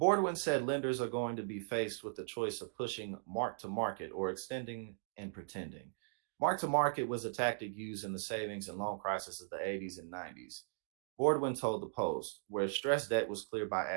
lenders are going to be faced with the choice of pushing mark to market or extending and pretending. Mark to market was a tactic used in the savings and loan crisis of the 80s and 90s. Boardwin told the Post, where stress debt was cleared by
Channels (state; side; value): silent; left; digital silence